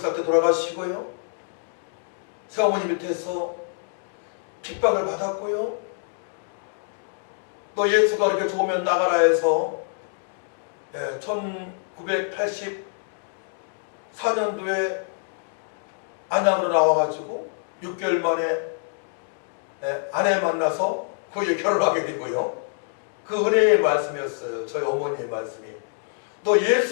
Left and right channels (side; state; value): right; silent; digital silence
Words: 때 돌아가시고요, 새어머니 밑에서 핍박을 받았고요, 또 예수가 그렇게 좋으면 나가라 해서 1984년도에 안양으로 나와가지고 6개월 만에 아내 만나서 거기에 결혼하게 되고요. 그 은혜의 말씀이었어요. 저희 어머니의 말씀이. 너